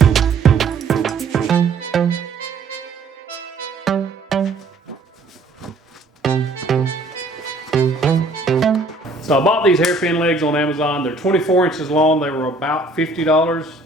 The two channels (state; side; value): quieter; left; 3.4 dB